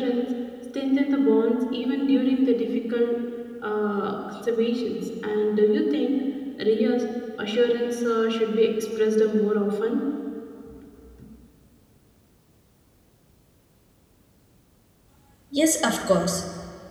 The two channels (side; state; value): both; identical; correlation 1.00